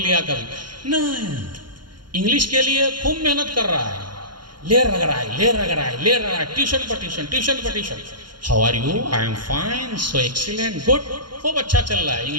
لیا کبھی نہیں، انگلش کے لیے خوب محنت کر رہا ہے، لے رہا ہے، ٹیوشن پر tuition. How are you? I am fine, so excellent, good, خوب اچھا چل رہا ہے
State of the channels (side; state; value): left; late; 0.71 ms